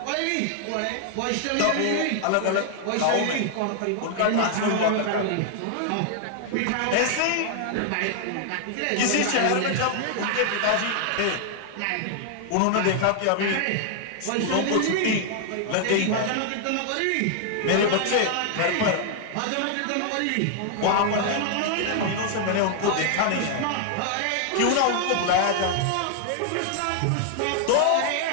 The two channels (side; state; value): both; different; correlation 0.00